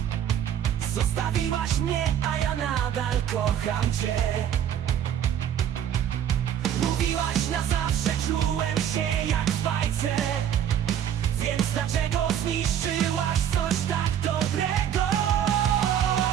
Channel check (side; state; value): left; quieter; 9.7 dB